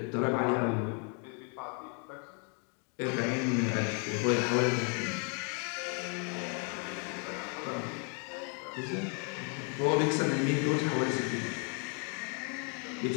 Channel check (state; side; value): quieter; right; 38.9 dB